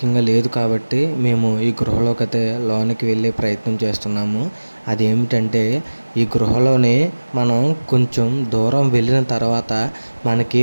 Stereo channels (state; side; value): inverted; both; correlation -1.00